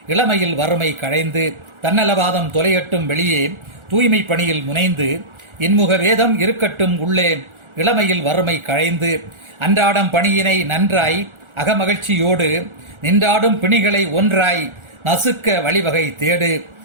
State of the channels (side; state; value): left; late; 1.4 ms